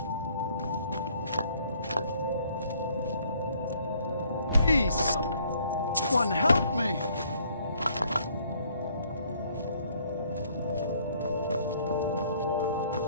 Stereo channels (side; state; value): both; inverted; correlation -0.63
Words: Please, one help me.